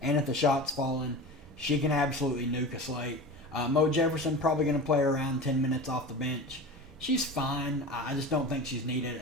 And if the shot's falling, she can absolutely nuke a slate. Mo Jefferson probably going to play around 10 minutes off the bench. She's fine. I just don't think she's needed.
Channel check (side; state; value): both; normal; correlation 0.32